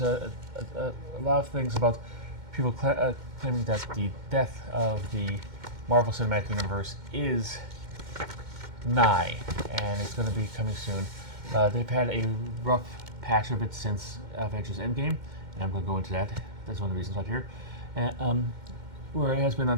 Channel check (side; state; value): left; late; 2.1 ms